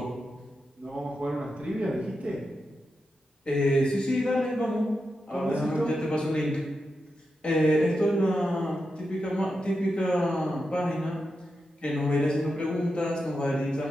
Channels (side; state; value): both; normal; correlation 0.88